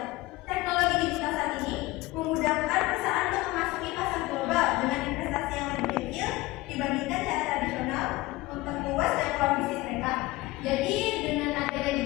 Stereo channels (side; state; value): right; quieter; 19.5 dB